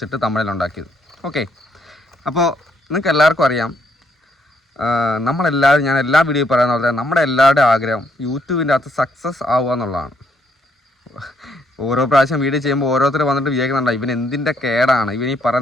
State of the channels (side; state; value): both; normal; correlation 0.72